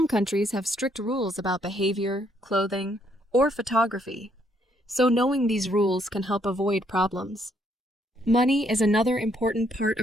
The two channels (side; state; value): both; normal; correlation 0.70